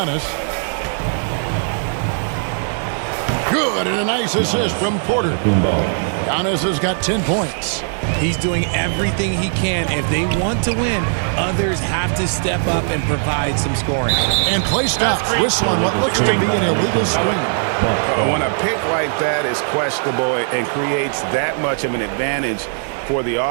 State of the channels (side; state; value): left; silent; 67 dB below the other